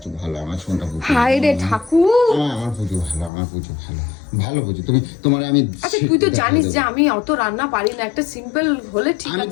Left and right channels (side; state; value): right; drops out; at 3.3 s